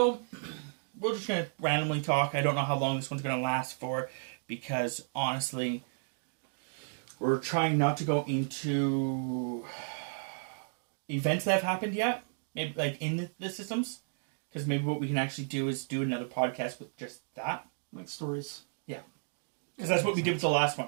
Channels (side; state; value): left; silent; digital silence